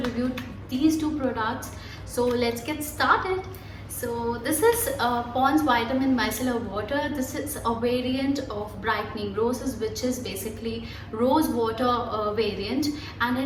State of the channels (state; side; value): identical; both; correlation 1.00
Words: these two products. So let's get started. So this is Pond's Vitamin Micellar Water. This is a variant of Brightening Roses, which is basically rose water variant, and